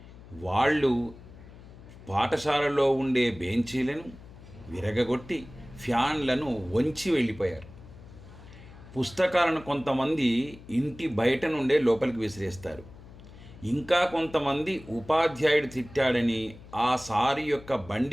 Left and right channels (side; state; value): left; noise; hum, 19 dB below the sound